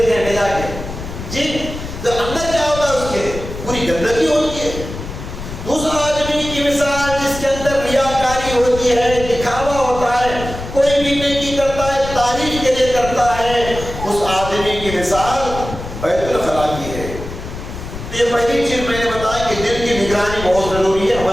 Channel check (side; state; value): left; noise; rumble, 9 dB below the sound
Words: ہیں لے جا کے جی. تو اندر کیا ہوتا ہے، اس کے پوری گندگی ہوتی ہے. دوسرا آدمی کی مثال جس کے اندر ریاکاری ہوتی ہے، دکھاوا ہوتا ہے، کوئی بھی نیکی کرتا ہے تعریف کے لیے کرتا ہے، اس آدمی کی مثال بیت الخلا کی ہے. یہ پہلی چیز میں نے بتایا کہ دل کی نگرانی بہت ضروری ہے